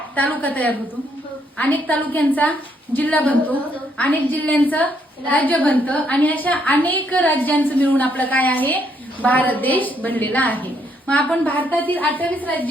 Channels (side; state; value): both; normal; correlation 0.72